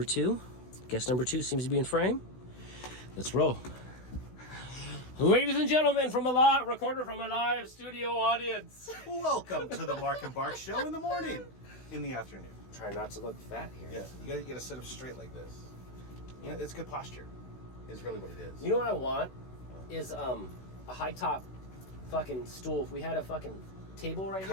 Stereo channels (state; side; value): late; right; 16 ms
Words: 2. Guest number 2 seems to be in frame. Let's roll. Ladies and gentlemen, recorded from a live studio audience. Welcome to the Marc and Barc show in the morning, in the afternoon. Try not to look fat here. Yeah, you gotta sit up straight like this. You know, it's good posture. Is really what it is. You know what I want is a high top fucking stool. If we had a fucking table right here.